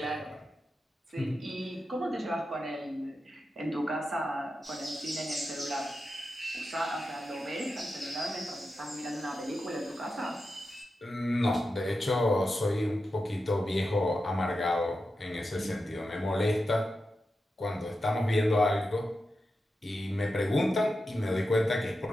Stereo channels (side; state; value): both; normal; correlation 0.90